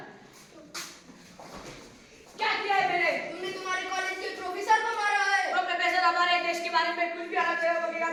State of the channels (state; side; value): identical; both; correlation 1.00